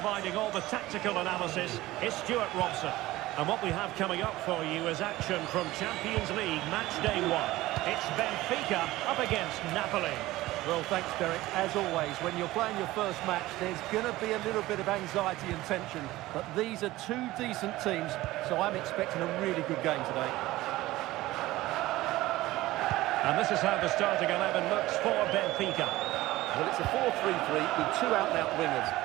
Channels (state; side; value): quieter; left; 17.5 dB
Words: all the tactical analysis is Stuart Robson. And what we have coming up for you is action from Champions League match day 1. It's Benfica up against Napoli. Well, thanks, Derek. As always, when you're playing your first match, there's going to be a little bit of anxiety and tension. But these are two decent teams, so I'm expecting a really good game today. And this is how the starting 11 looks for Benfica. Well, it's a 4-3-3 with two out-and-out wingers,